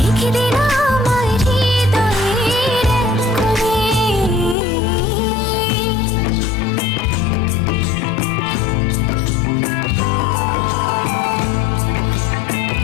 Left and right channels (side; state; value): right; drops out; at 4.5 s